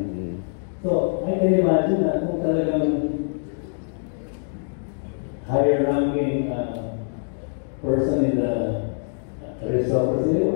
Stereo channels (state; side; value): silent; right; digital silence